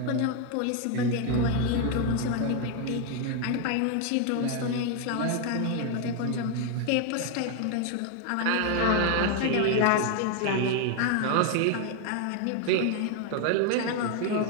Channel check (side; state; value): both; different; correlation 0.01